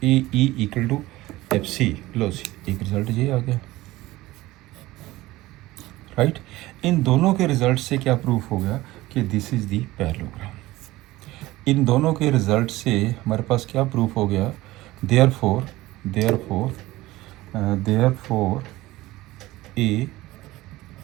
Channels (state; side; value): quieter; left; 18.0 dB